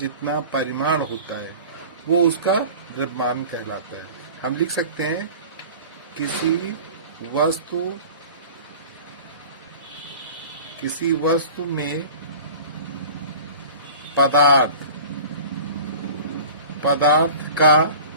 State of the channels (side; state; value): both; inverted; correlation -0.40